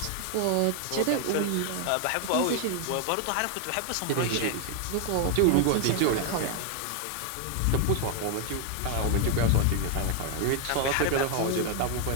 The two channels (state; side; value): different; both; correlation 0.00